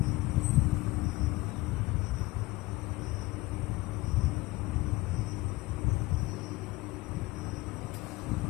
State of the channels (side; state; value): right; quieter; 21.0 dB